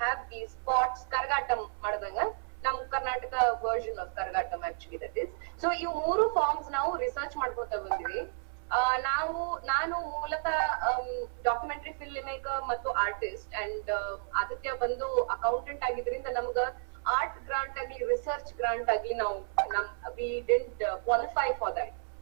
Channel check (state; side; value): silent; left; 56 dB below the other